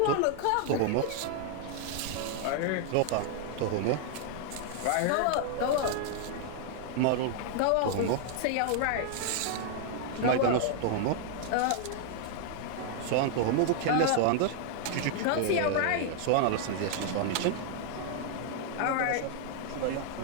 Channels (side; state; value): both; different; correlation 0.00